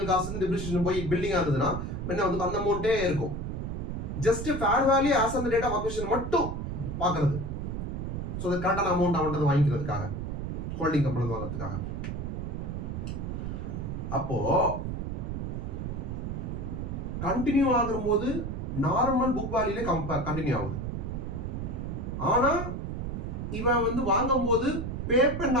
காஸ்ட் டிப்ரிசியேஷன் போய் பில்டிங்கா இருந்ததுன்னா என்ன வந்து அந்த அமௌண்ட்டே இருக்கும். Just fair value as on the date of acquisition மட்டும் பாக்குறது. சோ அது கரெக்டான அமௌண்ட் அவன்கிட்ட வாங்கிக்கிறதுக்காக ஹோல்டிங் கம்பெனி வாங்குறதுக்காக. அப்போ கண்டினியூ ஆகும்போது நார்மல் புக் வேல்யூல கண்டினியூ ஆகுது. ஆனா இவன் வந்து வாங்கும் போது பே பண்ண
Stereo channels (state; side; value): noise; right; rumble, 4 dB below the sound